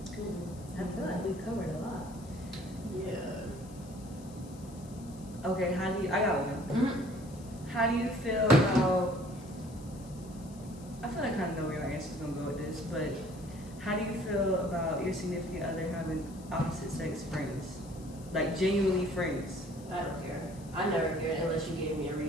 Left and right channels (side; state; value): left; noise; hiss, 22 dB below the sound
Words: I feel like we covered a lot. Yeah. okay, I got one. Mm-hmm. How do you feel about, I feel like I kind of know where your answer's gonna go with this, but how do you feel about your significant other having opposite sex friends? Like genuinely friends? I don't care. I never cared unless you gave me a